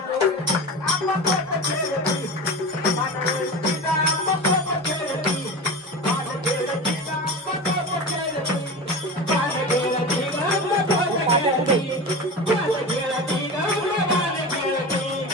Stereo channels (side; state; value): both; normal; correlation 0.29